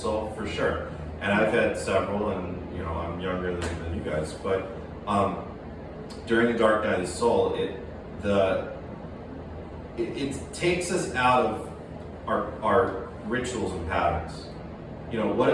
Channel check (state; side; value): identical; both; correlation 1.00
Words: For sure. And I've had several, and I'm younger than you guys, but during the dark night of the soul, it takes us out of our rituals and patterns.